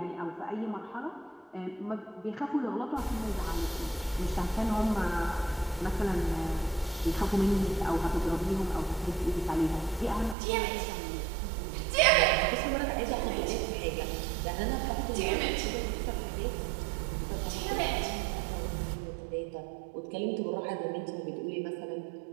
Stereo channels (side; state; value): left; drops out; at 10.4 s